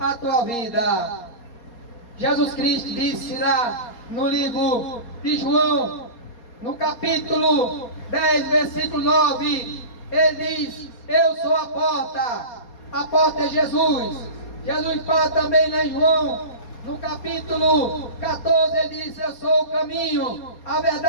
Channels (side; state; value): right; late; 4.2 ms